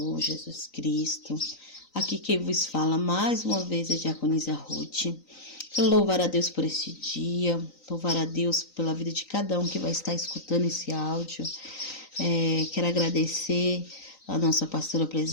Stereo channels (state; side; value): late; right; 3.9 ms